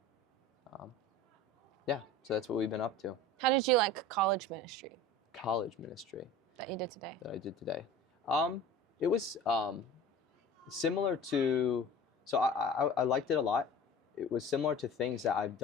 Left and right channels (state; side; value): normal; both; correlation 0.38